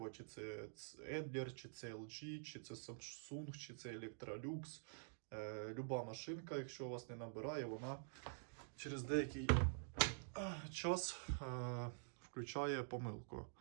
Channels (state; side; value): silent; left; digital silence